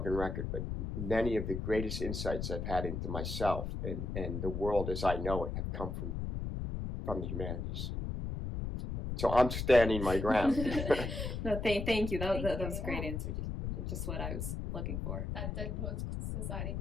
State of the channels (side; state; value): left; noise; rumble, 3 dB below the sound